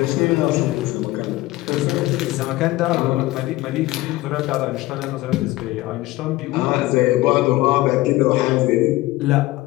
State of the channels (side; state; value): right; quieter; 18.2 dB